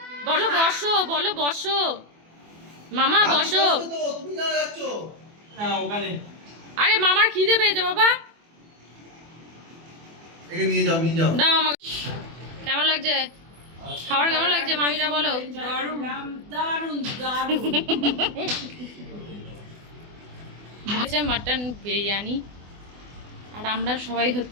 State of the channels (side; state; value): left; late; 24 ms